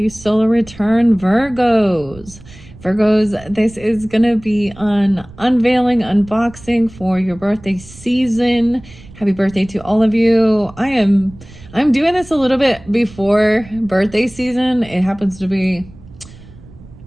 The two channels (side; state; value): right; noise; rumble, 20 dB below the sound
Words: solar return, Virgos. Virgos, this is gonna be an unveiling, unboxing for your birthday season. Happy birthday to all of you. I'm doing this a little bit before birthday season. It happens to be